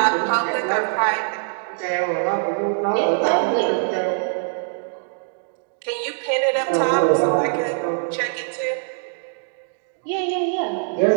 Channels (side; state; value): left; silent; digital silence